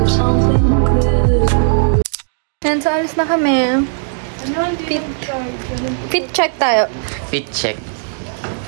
of something good. And so, alis na kami. Fit check tayo. Fit check.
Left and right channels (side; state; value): left; silent; digital silence